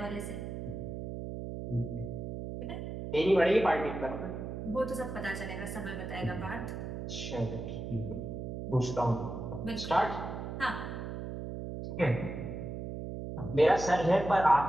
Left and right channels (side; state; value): right; noise; hum, 6 dB below the sound